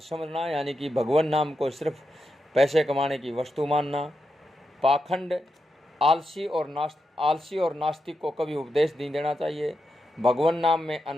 यानी कि भगवान नाम को सिर्फ पैसे कमाने की वस्तु मानना, पाखंड, आलसी और नास्तिक को कभी उपदेश नहीं देना चाहिए, भगवान नाम में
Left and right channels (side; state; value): both; normal; correlation 0.86